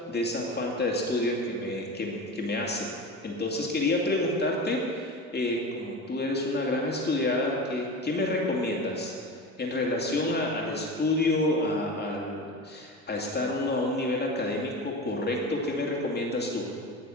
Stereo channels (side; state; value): both; normal; correlation 0.28